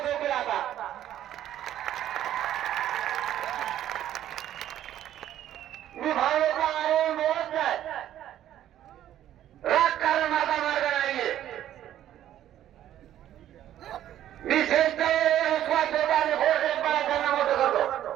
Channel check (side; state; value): left; quieter; 11.8 dB